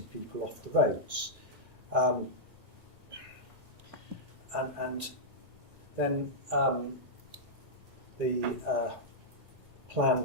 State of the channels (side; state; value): left; late; 1.8 ms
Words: people off the roads. And then the plan